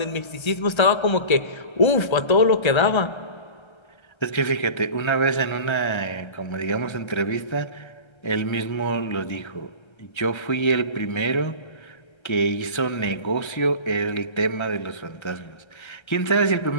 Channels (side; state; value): right; late; 1.3 ms